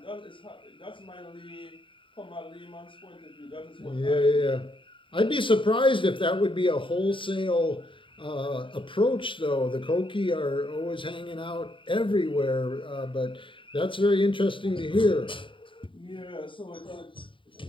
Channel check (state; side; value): late; right; 0.25 ms